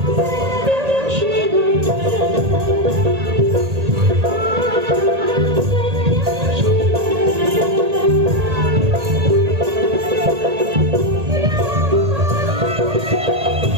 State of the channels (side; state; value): left; late; 1.8 ms